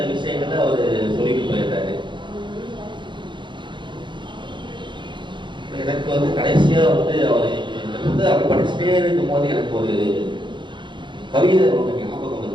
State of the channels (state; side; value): late; left; 0.23 ms